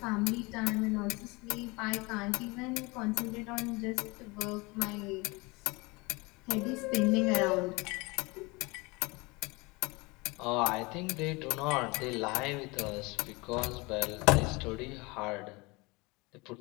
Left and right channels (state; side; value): quieter; right; 25.5 dB